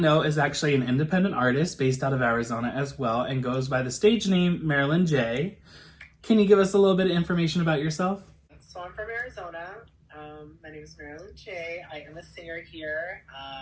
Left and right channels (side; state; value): both; identical; correlation 1.00